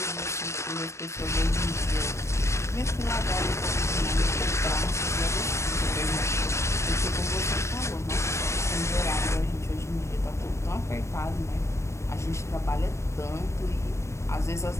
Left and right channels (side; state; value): right; late; 0.13 ms